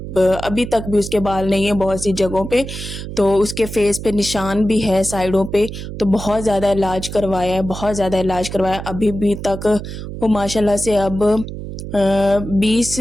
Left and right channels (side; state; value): right; noise; hum, 9 dB below the sound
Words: तक भी उसके बाल नहीं है बहुत सी जगहों पे, तो उसके फेस पे निशान भी है साइडों पे, तो बहुत ज़्यादा इलाज करवाया है, बहुत ज़्यादा इलाज करवाया। अभी भी तक वो माशाल्लाह से अब